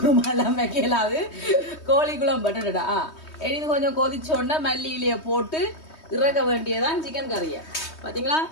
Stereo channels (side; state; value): right; late; 3.2 ms